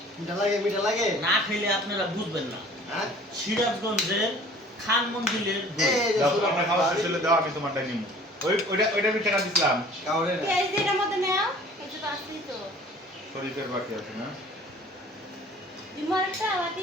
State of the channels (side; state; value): both; normal; correlation 0.49